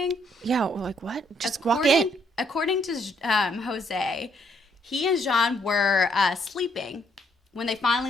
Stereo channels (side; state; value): both; normal; correlation 0.70